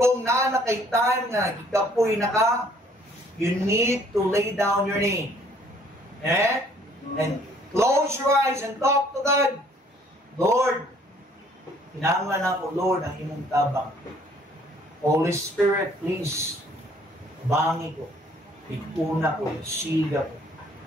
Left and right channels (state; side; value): normal; both; correlation 0.60